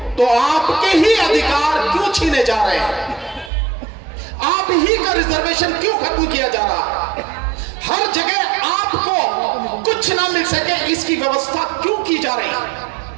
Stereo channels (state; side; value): drops out; left; at 3.5 s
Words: तो आपके ही अधिकार क्यों छीने जा रहे हैं? आप ही का रिजर्वेशन क्यों खत्म किया जा रहा है? हर जगह आपको कुछ ना मिल सके इसकी व्यवस्था क्यों की जा रही है?